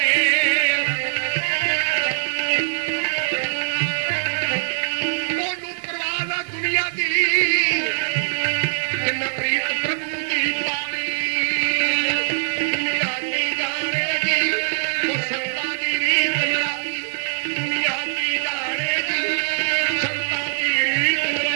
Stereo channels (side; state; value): left; silent; digital silence